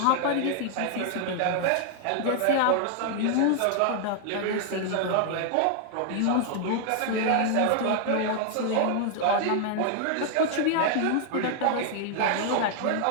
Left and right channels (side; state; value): both; different; correlation 0.00